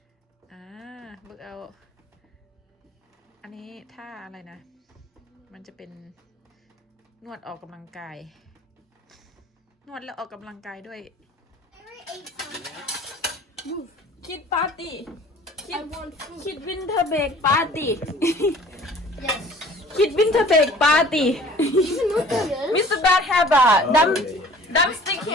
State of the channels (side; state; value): both; normal; correlation 0.49